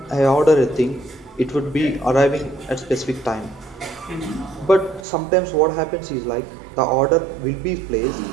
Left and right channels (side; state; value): left; drops out; at 5.1 s